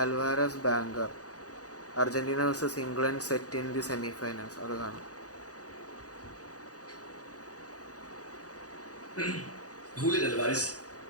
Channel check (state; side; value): late; right; 0.67 ms